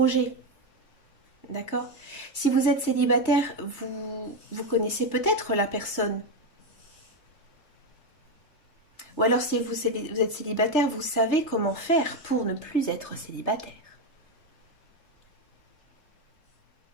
D'accord? Si vous êtes célibataire, vous connaissez peut-être la personne. Ou alors si vous êtes célibataire, vous savez comment faire pour ne plus être célibataire.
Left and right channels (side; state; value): right; late; 3.3 ms